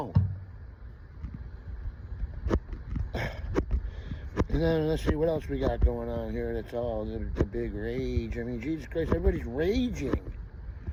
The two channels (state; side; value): identical; both; correlation 1.00